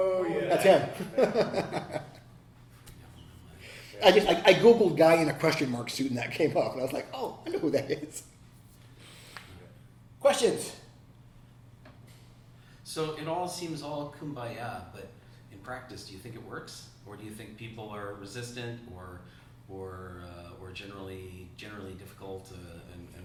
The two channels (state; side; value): identical; both; correlation 1.00